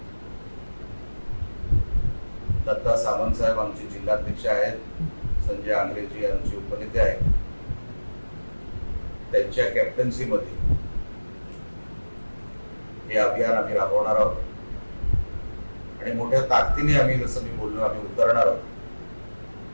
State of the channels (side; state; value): both; inverted; correlation -1.00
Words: दत्ता सामंत साहेब आमचे जिल्हाध्यक्ष आहेत, संजय आंग्रेजी आमचे उपनेते आहेत, त्यांच्या कॅप्टन्सीमध्ये हे अभियान आम्ही राबवणार आहोत आणि मोठ्या ताकदीने आम्ही, जसं मी बोललो, आम्ही उतरणार आहोत।